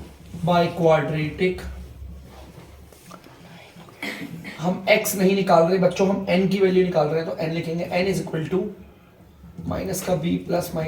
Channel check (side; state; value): both; identical; correlation 1.00